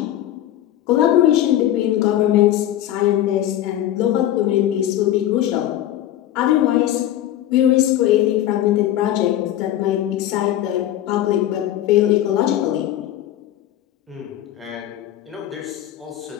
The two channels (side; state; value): right; quieter; 12.5 dB